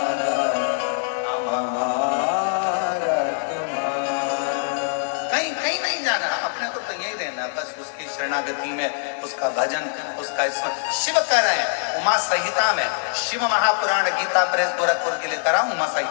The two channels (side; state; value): right; silent; digital silence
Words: हमारा तुम्हारा। कहीं कहीं नहीं जाना, अपने को तो यही रहना, बस उसकी शरणागति में, उसका भजन, उसका स्मरण। शिव कह रहे हैं उमा संहिता में, शिव महापुराण गीता प्रेस गोरखपुर के लिए कराऊं, उमा